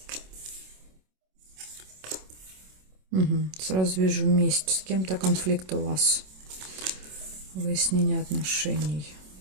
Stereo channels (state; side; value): late; left; 27 ms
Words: Сразу вижу месть. С кем-то конфликт у вас. Выяснение отношений.